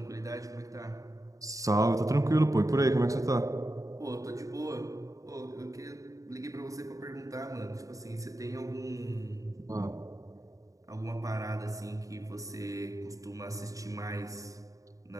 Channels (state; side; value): late; left; 0.16 ms